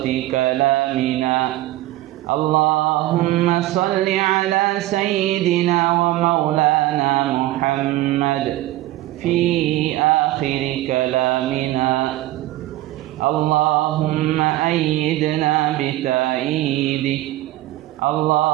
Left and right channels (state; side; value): quieter; left; 16.3 dB